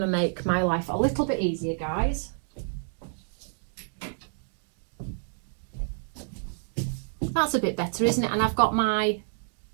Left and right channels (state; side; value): silent; left; digital silence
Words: to make my life a little bit easier, guys. That's a bit better, isn't it? And I've got my